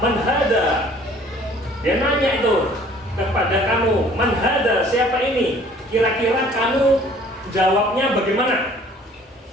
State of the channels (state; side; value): normal; both; correlation 0.54